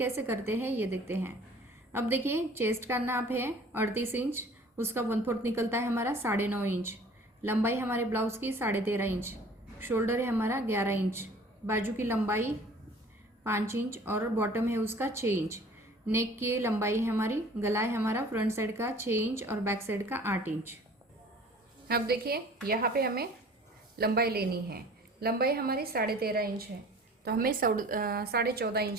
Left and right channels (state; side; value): normal; both; correlation 0.48